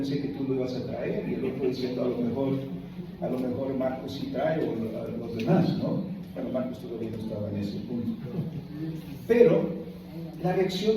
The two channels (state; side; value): identical; both; correlation 1.00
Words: que tú lo ibas a traer. Y el otro diciendo: a lo mejor Marcos sí trae, o los demás, ¿no? Bueno, Marcos todavía no estaba en ese punto. Pero la